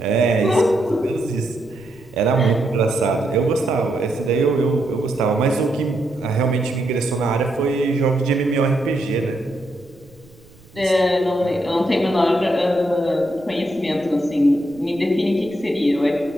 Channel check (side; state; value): right; noise; rumble, 26 dB below the sound